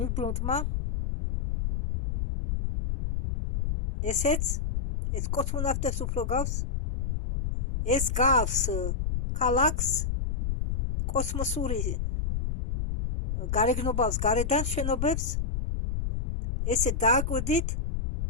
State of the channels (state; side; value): noise; left; rumble, 1 dB below the sound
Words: ესეც, ეს კოსმონავტებს უფრო გავს. ეს გავს ქალაქს, კოსმოსური გარეგნობავს გარედან შენობებს. ესე დააკვირდით.